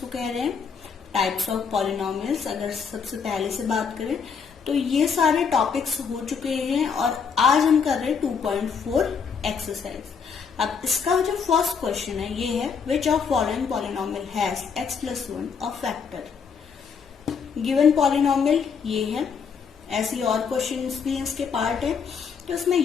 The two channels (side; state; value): right; quieter; 6.2 dB